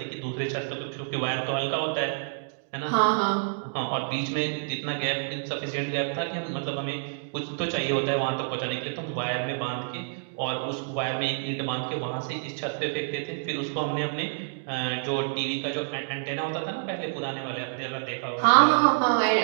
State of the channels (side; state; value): left; silent; digital silence